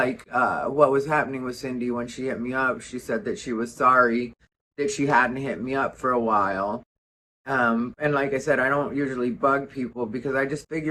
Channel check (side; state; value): both; identical; correlation 1.00